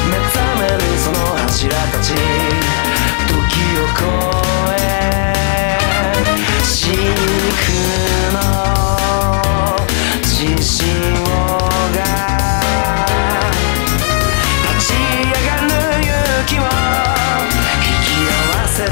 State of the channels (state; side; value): silent; right; digital silence